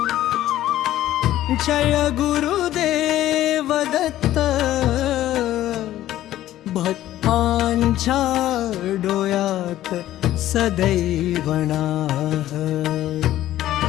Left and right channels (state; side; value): quieter; right; 13.7 dB